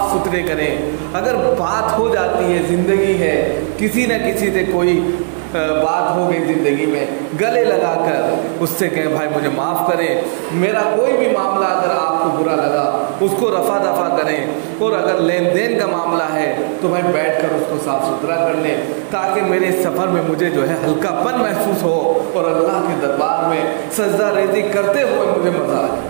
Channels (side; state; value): left; silent; digital silence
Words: सुथरे करें। अगर बात हो जाती है, जिंदगी है, किसी न किसी से कोई बात हो गई ज़िंदगी में, गले लगा कर उससे कहें भाई मुझे माफ़ करें, मेरा कोई भी मामला अगर आपको बुरा लगा उसको रफा दफा करें, और अगर लेन देन का मामला है तो भाई बैठ कर उसको साफ़ सुथरा कर लें, ताकि मेरे सफ़र में मुझे जो है हल्कापन महसूस हो और अल्लाह के दरबार में सजदा रेज़ी करते हुए मुझे मज़ा